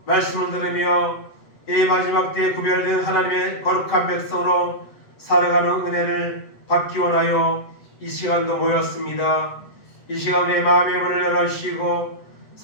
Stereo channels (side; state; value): right; late; 8.1 ms